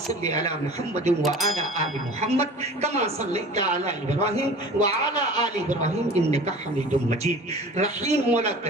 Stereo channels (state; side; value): normal; both; correlation 0.41